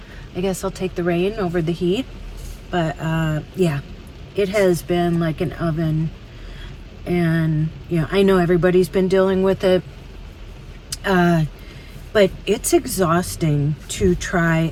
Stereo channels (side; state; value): both; identical; correlation 1.00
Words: I guess I'll take the rain over the heat. But yeah, it has been like an oven, and I know everybody's been dealing with it, but it's exhausting to try